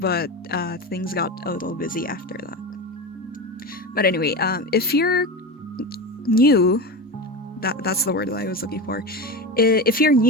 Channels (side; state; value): both; normal; correlation 0.23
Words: things got a little busy after that. But anyway, if you're new, that's the word that I was looking for. If you're